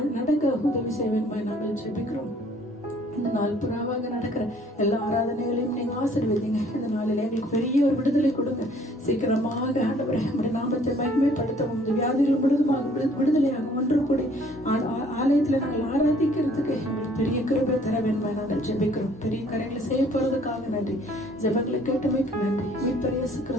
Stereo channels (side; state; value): both; normal; correlation 0.59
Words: நடக்க உதவி செய்வேன் நாங்கள் ஜெபிக்கிறோம். இந்த நாள் புறாவாக நடக்கிற எல்லா ஆராதனைகளையும் நீங்க ஆசீர்வதிங்க. இந்த நாளில் எங்களுக்கு பெரிய ஒரு விடுதலை கொடுங்க. சீக்கிரமாக ஆண்டவரே நம்முடைய நாமத்தை மகிமைப்படுத்தவும், இந்த வியாதிகள் முழுதுமாக விடுதலையாக ஒன்று கூடி ஆலயத்துல நாங்கள் ஆராதிக்கிறதுக்கு எங்களுக்கு பெரிய கிருபை தர வேண்டுமா நாங்கள் ஜெபிக்கிறோம். பெரிய காரியங்களை செய்ய போறதுக்காக நன்றி. ஜெபங்களை கேட்டமைக்கு நன்றி. மீட்பர் இயேசு